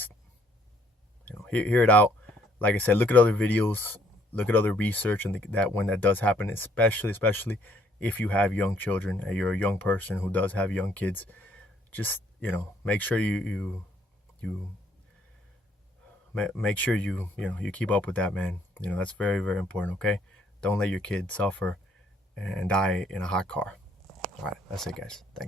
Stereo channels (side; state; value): both; normal; correlation 0.65